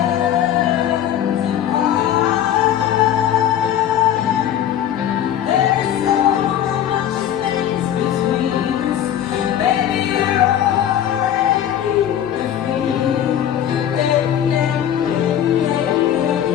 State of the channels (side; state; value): right; quieter; 10.5 dB